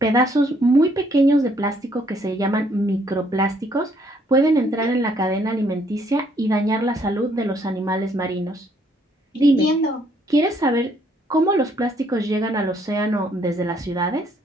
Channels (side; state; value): both; normal; correlation 0.67